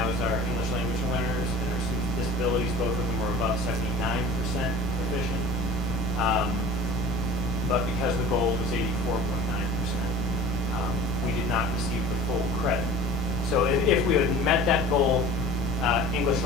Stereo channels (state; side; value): normal; both; correlation 0.42